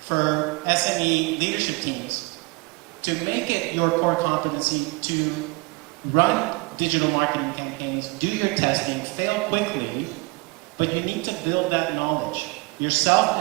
for SME leadership teams to make it your core competency to run digital marketing campaigns, do your testing, fail quickly, but you need to build that knowledge yourself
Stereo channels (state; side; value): quieter; left; 26.6 dB